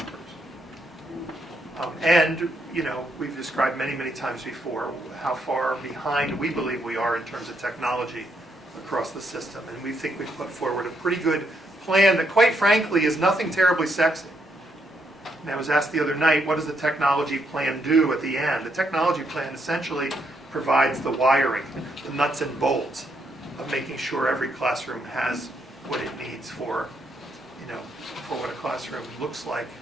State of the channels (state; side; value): normal; both; correlation 0.77